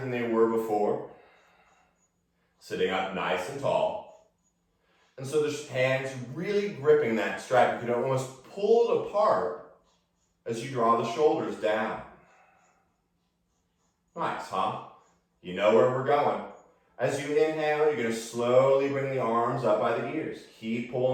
they were before. Sitting up nice and tall. And so the hands really gripping that strap. You can almost pull it apart as you draw the shoulders down. Nice, huh? You know where we're going. As you inhale, you're going to slowly bring the arms up by the ears. Keep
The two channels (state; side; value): identical; both; correlation 1.00